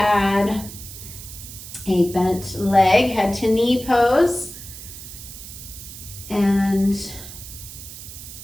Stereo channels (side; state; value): right; noise; hiss, 13 dB below the sound